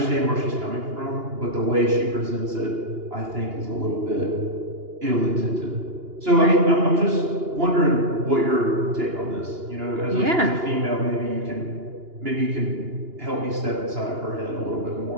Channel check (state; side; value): late; left; 2.9 ms